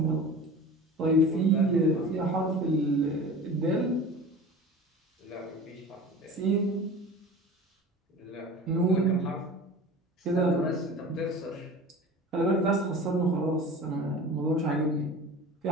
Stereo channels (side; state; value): both; normal; correlation 0.37